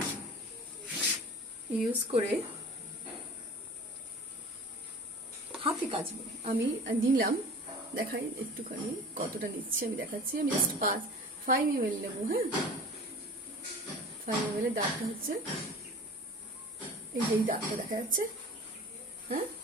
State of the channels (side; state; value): both; normal; correlation 0.40